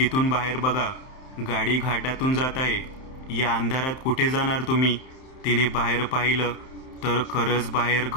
बाहेर बघा, गाडी घाटातून जात आहे. या अंधारात कुठे जाणार तुम्ही? तिने बाहेर पाहिलं तर खरंच बाहेर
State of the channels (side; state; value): right; late; 31 ms